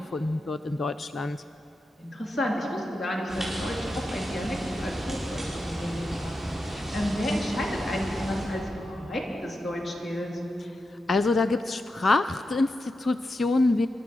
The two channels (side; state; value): both; normal; correlation 0.89